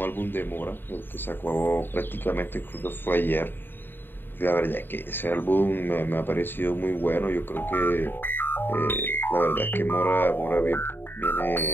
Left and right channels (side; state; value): right; late; 0.097 ms